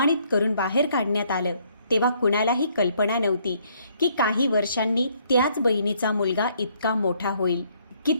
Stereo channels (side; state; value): both; inverted; correlation -0.67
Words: करून बाहेर काढण्यात आलं, तेव्हा कुणालाही कल्पना नव्हती की काही वर्षांनी त्याच बहिणीचा मुलगा इतका मोठा होईल की